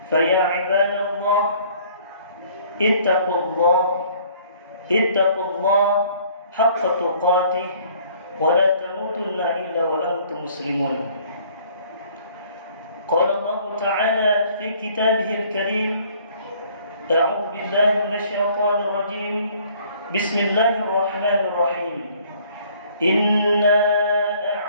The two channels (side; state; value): both; inverted; correlation -0.57